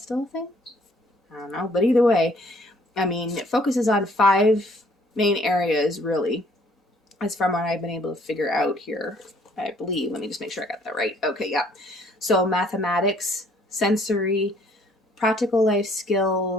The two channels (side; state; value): both; normal; correlation 0.61